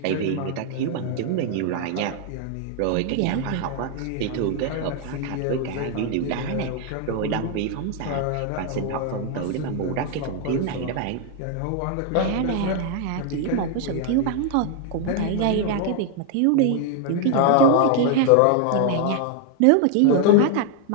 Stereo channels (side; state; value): both; different; correlation 0.00